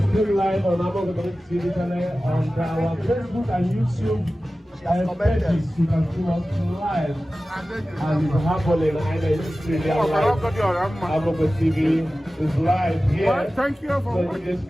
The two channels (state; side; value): normal; both; correlation 0.96